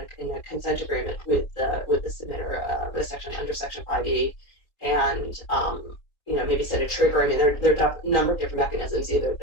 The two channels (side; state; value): right; late; 3.7 ms